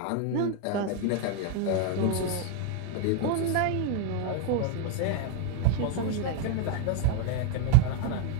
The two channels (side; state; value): both; different; correlation 0.01